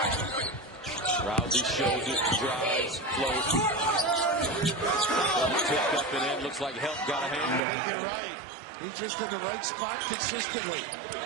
Rousey shows it, drives, floats. Tipped up and in. Looks like help got a hand I on think you're right. He's just in the right spot consistently.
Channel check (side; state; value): left; drops out; at 7.6 s